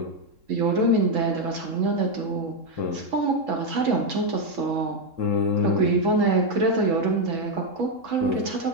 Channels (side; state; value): left; late; 3.7 ms